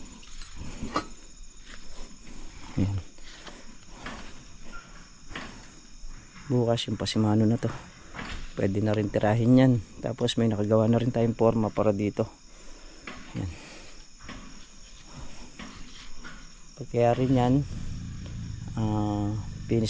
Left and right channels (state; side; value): identical; both; correlation 1.00